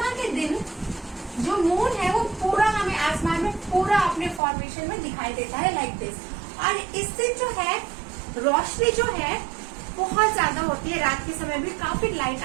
के दिन जो मून है वो पूरा हमें आसमान में पूरा अपने फॉर्मेशन में दिखाई देता है, लाइक दिस। और इस दिन जो है रोशनी जो है बहुत ज्यादा होती है, रात के समय भी काफी लाइट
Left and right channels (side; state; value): left; drops out; at 4.4 s